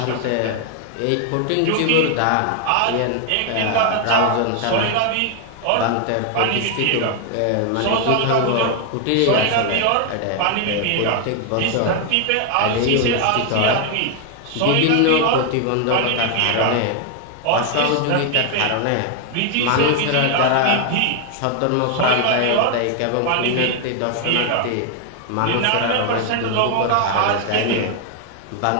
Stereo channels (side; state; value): both; different; correlation 0.00